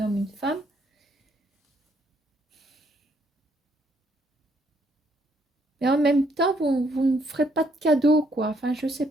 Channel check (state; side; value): normal; both; correlation 0.70